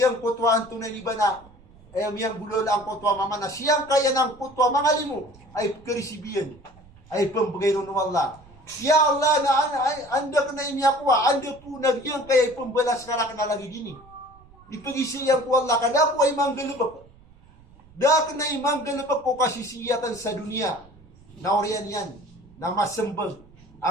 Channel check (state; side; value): noise; right; rumble, 25 dB below the sound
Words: kutwaan tunay liba na ay miyang bulol ang kutwa mama na siyang kaya ng kutwa mga limo ay karisibiyan ay pambagay ng Allah. Ya Allah na anda ka na inyakwa, anda po nagyang kaya ay pambalas ka na lagi dini. Ipagisiyang ko Allah kada po ay manggalubak. Dak na ay manggalubak ko kasisiyatan sa dunia. Na oriyan yan, na masembag.